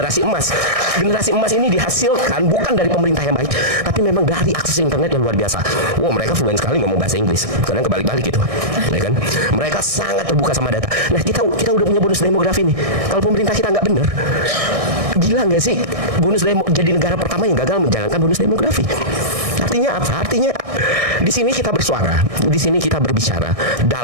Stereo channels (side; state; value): left; late; 1.6 ms